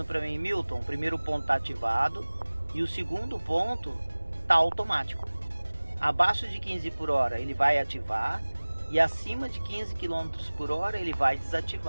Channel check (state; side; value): inverted; both; correlation -1.00